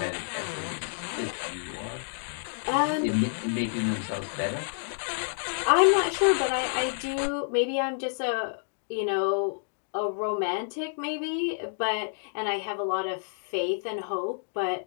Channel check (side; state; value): right; silent; digital silence